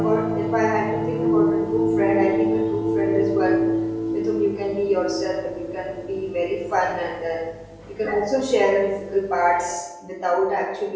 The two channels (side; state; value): both; identical; correlation 1.00